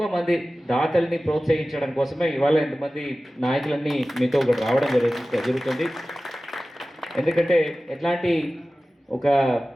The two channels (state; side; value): normal; both; correlation 0.96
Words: మంది దాతల్ని ప్రోత్సహించడం కోసమే ఇవాళ ఎంతమంది నాయకులన్నీ మీతో ఒకటి రావడం జరుగుతుంది. ఎందుకంటే ఎట్లాంటి ఒక